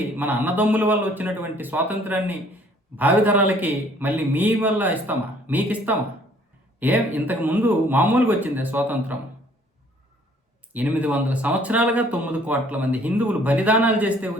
మన అన్నదమ్ముల వల్ల వచ్చినటువంటి స్వాతంత్రాన్ని భావితరాలకి మళ్ళీ మీ వల్ల ఇస్తామా? మీకు ఇస్తామా? ఇంతకుముందు మామూలుగా వచ్చిందే స్వాతంత్రం? 800 సంవత్సరాలుగా 9 కోట్ల మంది హిందువులు బలిదానాలు చేస్తే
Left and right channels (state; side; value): normal; both; correlation 0.59